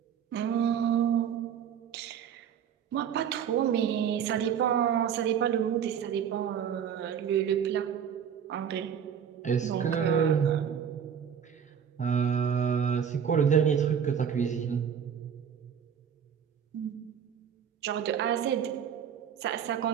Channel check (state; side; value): quieter; left; 8.1 dB